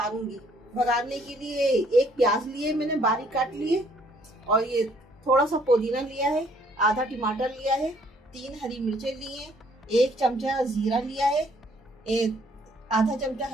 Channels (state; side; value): normal; both; correlation 0.63